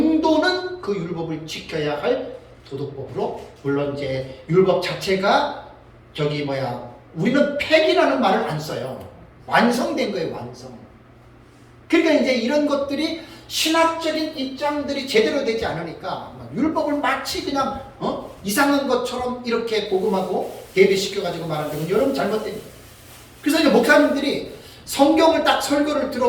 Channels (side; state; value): both; identical; correlation 1.00